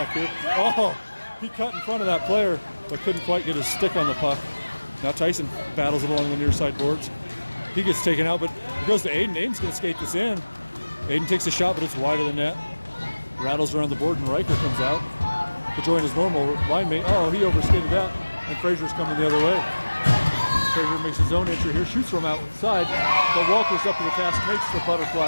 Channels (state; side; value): inverted; both; correlation -1.00